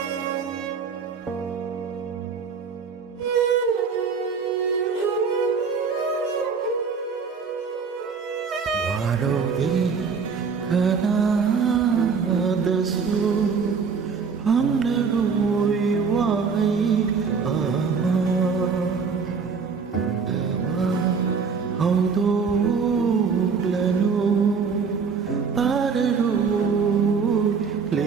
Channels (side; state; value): left; quieter; 5.6 dB